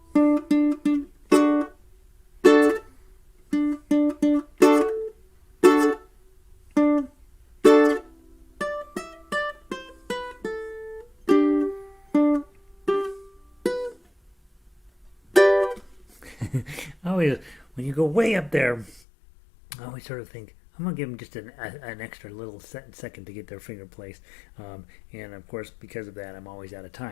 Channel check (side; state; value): right; drops out; at 19.0 s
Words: Always, when you go way up there, I always sort of think, I'm going to give them just an extra little second to get their finger placed. And of course, because of that, I'm always out of